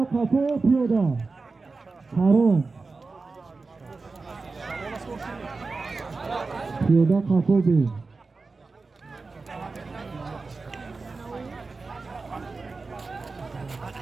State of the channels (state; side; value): quieter; left; 4.0 dB